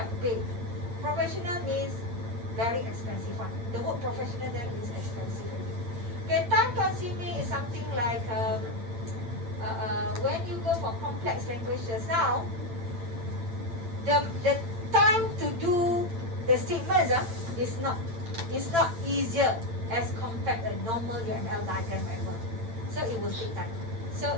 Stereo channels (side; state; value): left; late; 8.9 ms